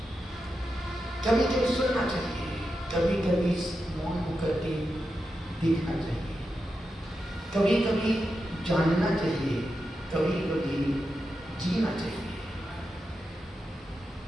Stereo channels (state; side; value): normal; both; correlation 0.88